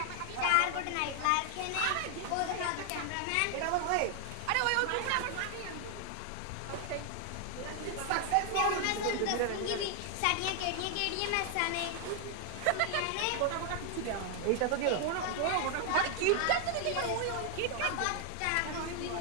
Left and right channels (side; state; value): both; different; correlation 0.00